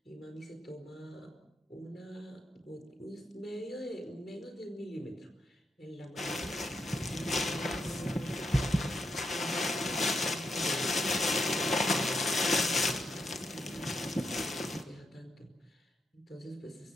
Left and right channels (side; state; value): both; normal; correlation 0.82